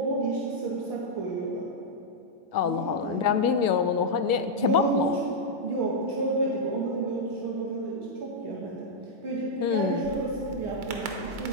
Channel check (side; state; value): right; late; 1.5 ms